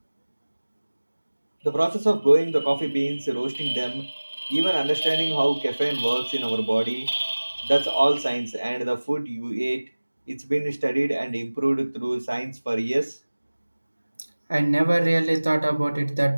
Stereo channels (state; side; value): inverted; both; correlation -1.00